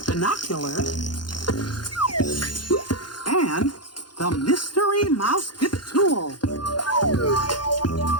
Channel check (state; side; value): late; right; 0.71 ms